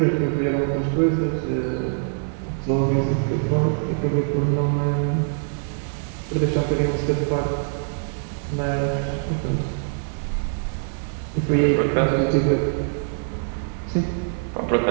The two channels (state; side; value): silent; left; 63 dB below the other